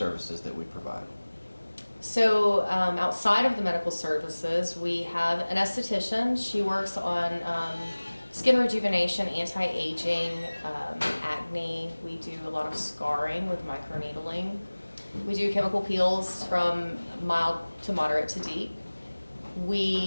that we provide. So outside of the medical services, we have an esthetician. She works on skin rejuvenation, anti-aging, acne. We do a lot of scarring with microneedling. We do chemical peels from mild to moderate to deep.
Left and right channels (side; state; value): both; inverted; correlation -1.00